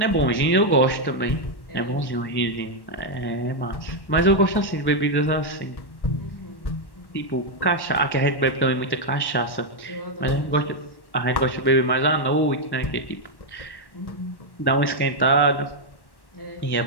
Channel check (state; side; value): late; right; 1.1 ms